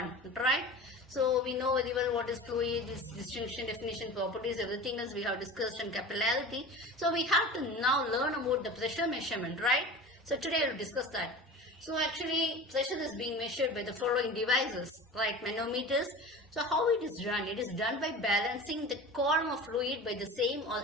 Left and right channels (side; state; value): both; normal; correlation 0.35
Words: right? So we know very well what is fluid, its distinction, definition, properties, everything else we have discussed in capillarity. So we have to now learn about the pressure measurement, right? So today we will discuss that. So actually pressure is being measured by the following devices, right? Manometers. So how it is done? It is done by balancing the column of fluid by the same or